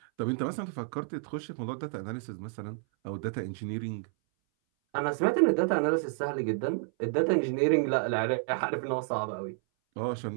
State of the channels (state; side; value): silent; left; 58 dB below the other